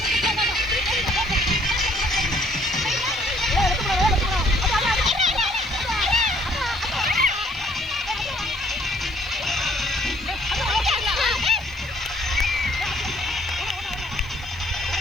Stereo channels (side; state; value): left; noise; hiss, 29 dB below the sound